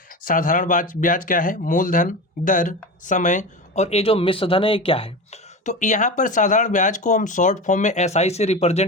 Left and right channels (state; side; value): normal; both; correlation 0.26